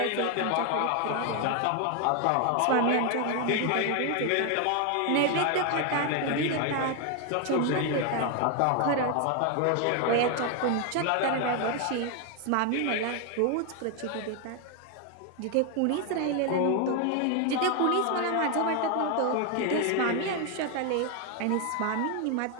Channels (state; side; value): different; both; correlation 0.01